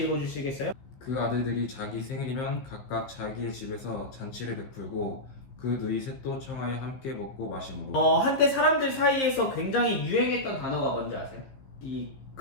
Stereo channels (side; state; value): right; late; 15 ms